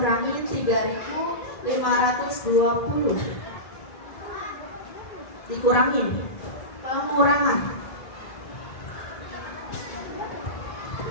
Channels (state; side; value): late; right; 2.0 ms